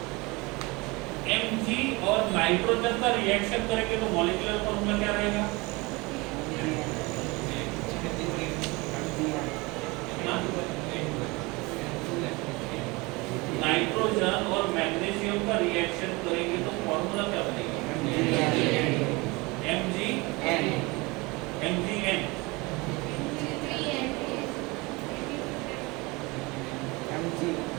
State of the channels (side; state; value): left; quieter; 24.8 dB